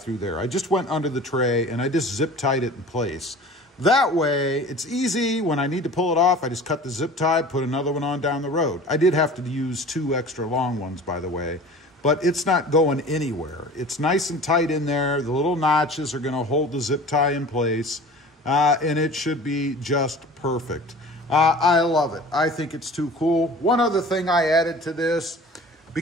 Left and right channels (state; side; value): normal; both; correlation 0.42